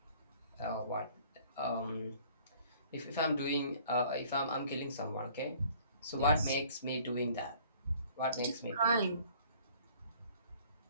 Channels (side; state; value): both; inverted; correlation -0.55